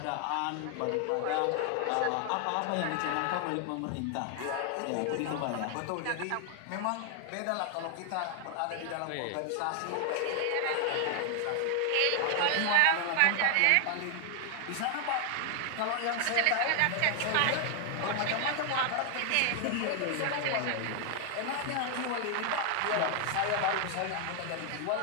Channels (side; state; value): both; different; correlation 0.00